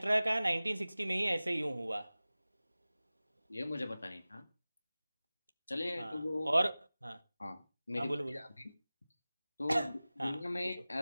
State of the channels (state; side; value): inverted; both; correlation -0.98